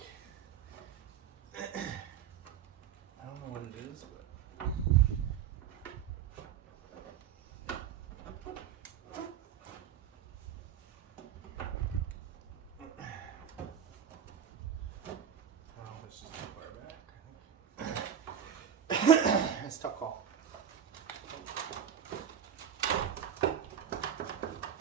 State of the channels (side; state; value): left; quieter; 8.7 dB